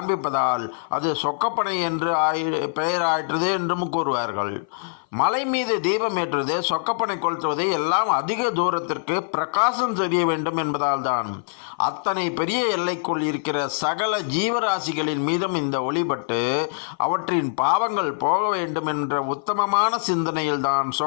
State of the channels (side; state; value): right; silent; 58 dB below the other